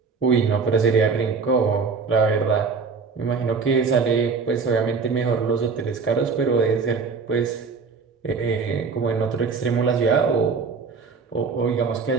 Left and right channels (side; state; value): left; quieter; 5.1 dB